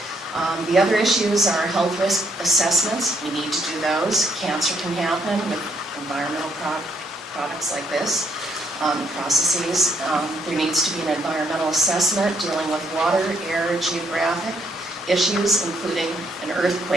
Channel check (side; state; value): both; normal; correlation 0.71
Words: The other issues are health risk assessments. We need to do those. Cancer can happen with environmental products like this, processes. There needs to be an environmental assessment dealing with water, air, geographic issues, including an